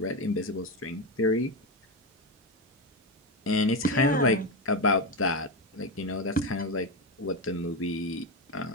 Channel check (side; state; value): both; normal; correlation 0.12